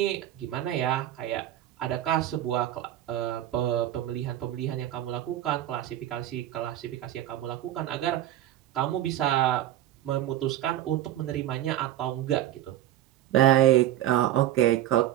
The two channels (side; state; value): left; quieter; 12.9 dB